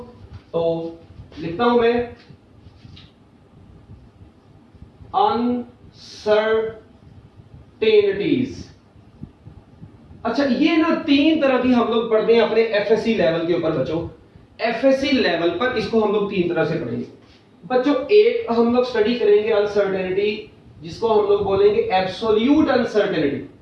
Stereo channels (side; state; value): both; identical; correlation 1.00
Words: तो लिखता हूं मैं अनसर्टेनिटीज। अच्छा, ये ना 3 तरह की हम लोग पढ़ते हैं अपने एफएससी लेवल के ऊपर बच्चों। एफएससी लेवल पर इसको हम लोग 3 तरह से पढ़ेंगे बच्चों। एक हम लोग स्टडी करेंगे अनसर्टेनिटी, जिसको हम लोग बोलेंगे एब्सोल्यूट अनसर्टेनिटी।